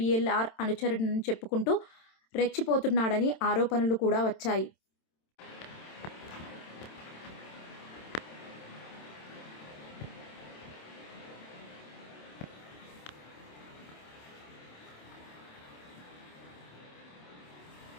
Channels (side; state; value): right; late; 27 ms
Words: అనుచరుడని చెప్పుకుంటూ రెచ్చిపోతున్నాడని ఆరోపణలు కూడా వచ్చాయి.